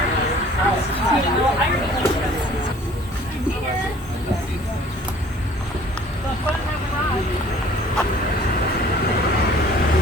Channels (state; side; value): normal; both; correlation 0.52